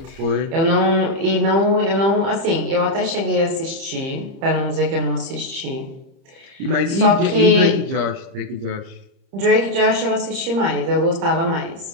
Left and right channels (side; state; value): left; late; 30 ms